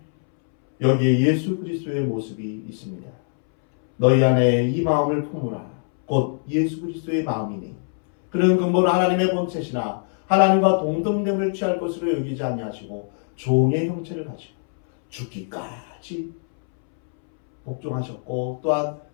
여기에 예수 그리스도의 모습이 있습니다. 너희 안에 이 마음을 품으라. 곧 예수 그리스도의 마음이니 그는 근본 하나님의 본체시나 하나님과 동등됨을 취할 것으로 여기지 아니하시고 종의 형체를 가지고 죽기까지 복종하셨고 또한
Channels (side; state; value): right; silent; 64 dB below the other